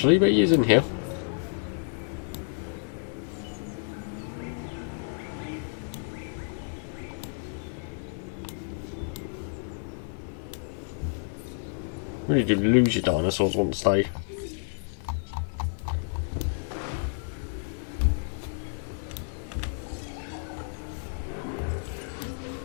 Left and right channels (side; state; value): right; silent; digital silence